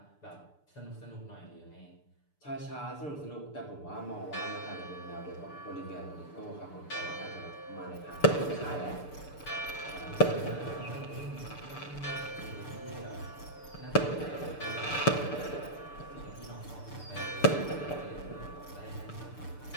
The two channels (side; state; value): right; late; 6.8 ms